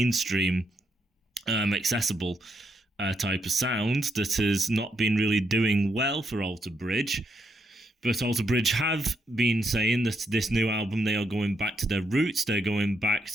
accessible type of sound that has not been really doing well for Alter Bridge. But Alter Bridge have been saying that this new album, they are going back to their roots. They're going back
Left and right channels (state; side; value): normal; both; correlation 0.79